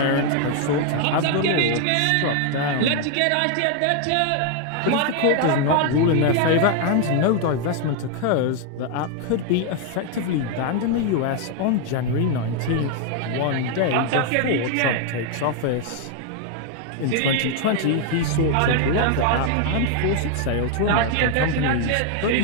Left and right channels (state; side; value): different; both; correlation 0.00